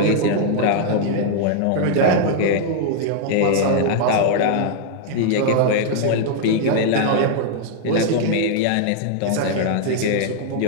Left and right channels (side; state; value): both; different; correlation 0.00